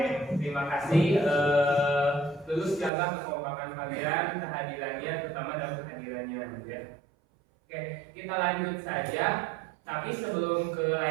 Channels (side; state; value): left; drops out; at 2.9 s